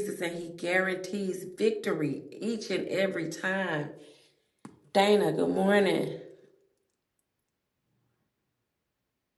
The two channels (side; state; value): both; identical; correlation 1.00